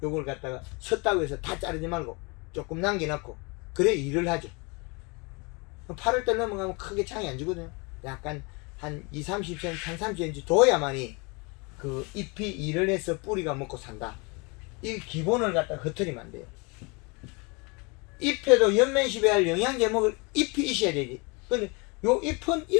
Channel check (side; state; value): right; quieter; 29.7 dB